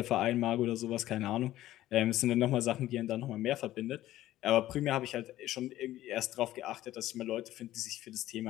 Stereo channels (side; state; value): right; quieter; 14.5 dB